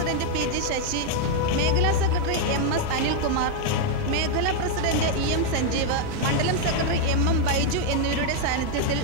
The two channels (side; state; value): both; different; correlation 0.00